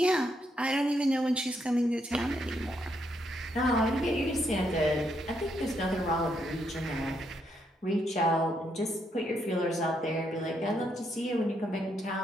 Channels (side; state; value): both; normal; correlation 0.77